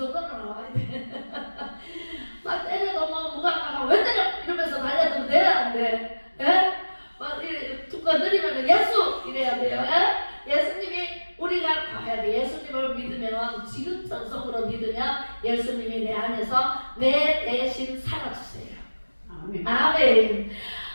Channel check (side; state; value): both; inverted; correlation -1.00